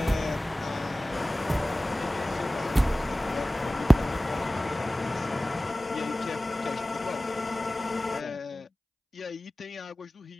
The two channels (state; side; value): normal; both; correlation 0.97